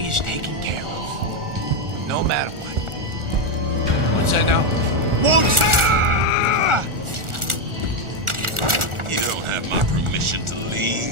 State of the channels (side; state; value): left; late; 1.4 ms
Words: is taken care of, no matter what. What's that now? You don't have my permission to